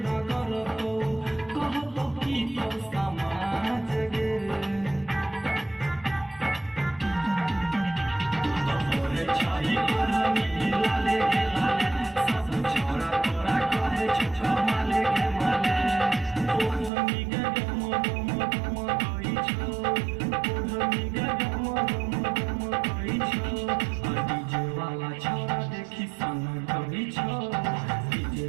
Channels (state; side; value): drops out; left; at 16.9 s